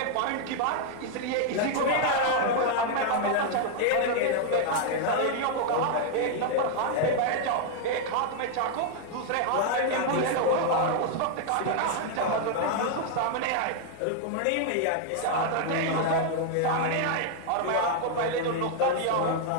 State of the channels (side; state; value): both; different; correlation 0.00